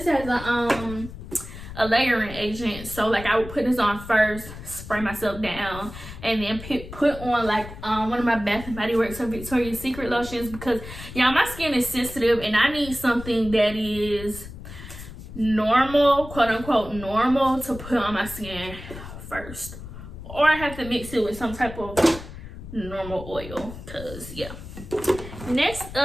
as a layering agent. So like, I would put this on first, spray myself down, and then put on like one of my Bath and Body Works or Victoria's Secret lotions, because y'all, my skin is sensitive and I need something that is normal, quote unquote normal, to put on my skin first, or I have to mix it with some type of normal oil, because yeah. Next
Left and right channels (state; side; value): noise; left; rumble, 12 dB below the sound